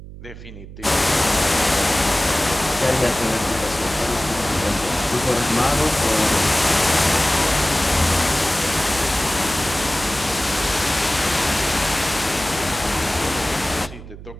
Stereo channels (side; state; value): right; noise; hum, 15 dB below the sound